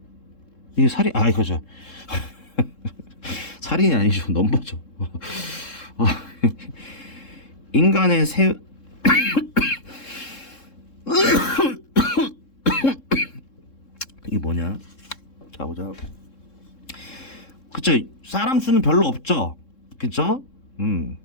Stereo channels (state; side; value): late; right; 3.7 ms